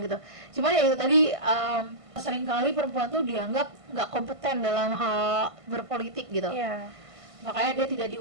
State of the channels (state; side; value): late; left; 1.5 ms